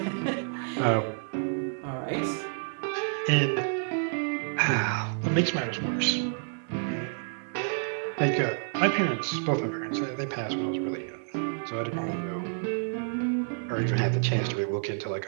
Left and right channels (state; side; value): silent; left; digital silence